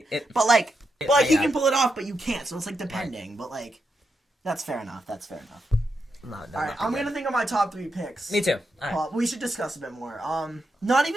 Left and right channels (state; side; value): normal; both; correlation 0.85